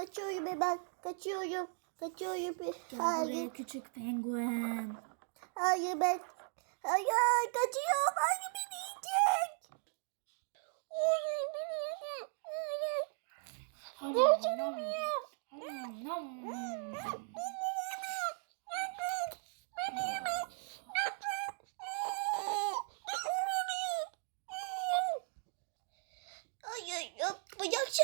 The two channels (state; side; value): silent; left; 53 dB below the other